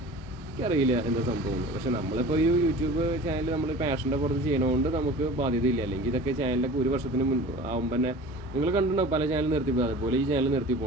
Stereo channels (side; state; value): both; normal; correlation 0.40